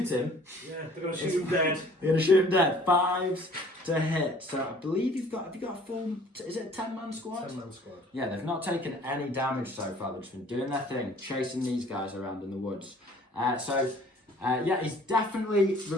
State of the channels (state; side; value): normal; both; correlation 0.53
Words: him. Yeah, they're going to shoot him dead. They're going to shoot him dead. 5s to hit. So I believe have you got a full, is it a 10-man squad? 10-man squad. Yeah, they've not taken any damage so far. They've just been doing their thing, chasing these guys around in the woods. He's definitely